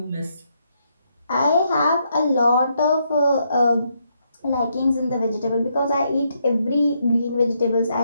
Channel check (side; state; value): both; inverted; correlation -0.77